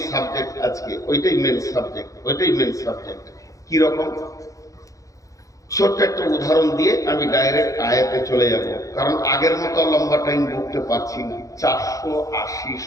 সাবজেক্ট আজকে, ওইটাই মেন সাবজেক্ট। কি রকম? ছোট্ট একটা উদাহরণ দিয়ে আমি ডাইরেক্ট আয়াতে চলে যাব, কারণ আগের মতো লম্বা টাইম বলতে পারছি না। 480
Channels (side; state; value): right; late; 0.16 ms